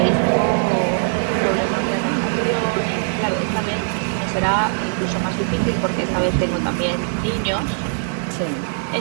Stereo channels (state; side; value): silent; left; 65 dB below the other